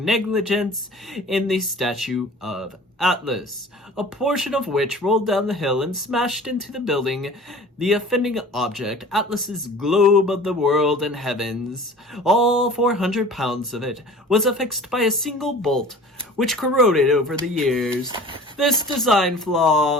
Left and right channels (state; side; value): normal; both; correlation 0.43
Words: negligence in the statue of Atlas, a portion of which rolled down the hill and smashed into the building. The offending object, Atlas's globe of the world and heavens, all 400 pounds of it, was affixed by a single bolt, which corroded over the years. This design